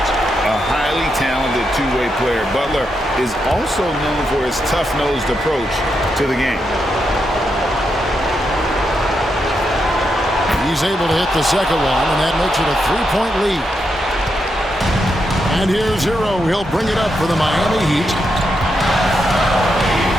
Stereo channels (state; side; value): normal; both; correlation 0.83